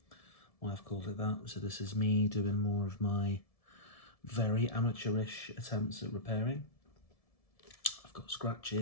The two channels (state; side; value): late; right; 1.7 ms